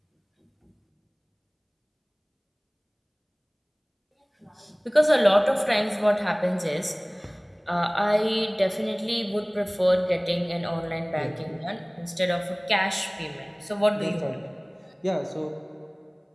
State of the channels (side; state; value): both; identical; correlation 1.00